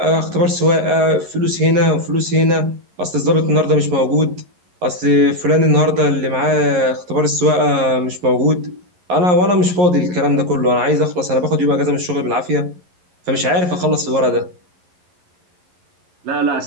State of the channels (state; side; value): late; left; 11 ms